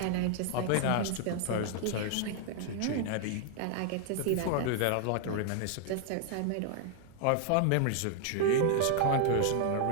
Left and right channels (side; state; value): both; different; correlation 0.00